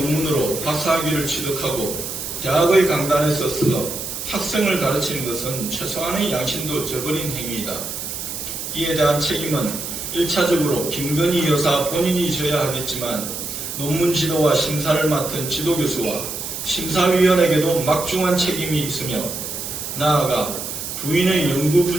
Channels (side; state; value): right; noise; hiss, 6 dB below the sound